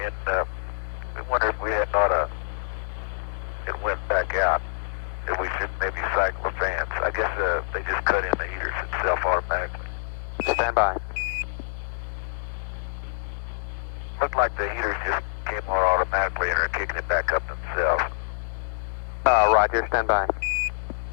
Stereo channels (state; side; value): silent; right; digital silence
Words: and we wondered if we had not it went back out, if we should maybe cycle the fans. I guess they just cut in the heaters itself automatically. Stand by. Looked like the heaters just came on automatically and are kicking it back up themselves. Roger, stand by.